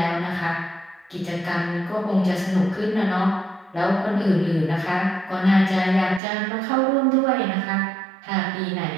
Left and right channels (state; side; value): drops out; left; at 6.2 s